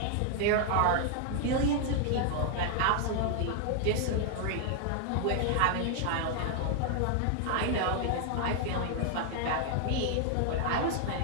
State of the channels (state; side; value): different; both; correlation 0.00